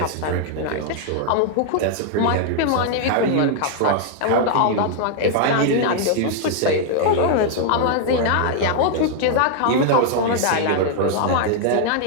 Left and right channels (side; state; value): both; different; correlation 0.00